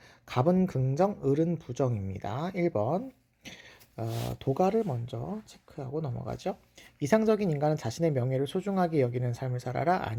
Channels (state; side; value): identical; both; correlation 1.00